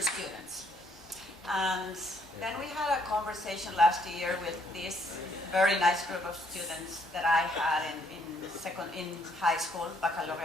students. And then we had a conversation last year with this very nice group of students that I had in high school,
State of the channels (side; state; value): both; normal; correlation 0.69